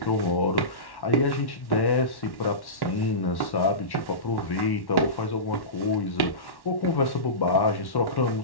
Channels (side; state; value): right; late; 1.1 ms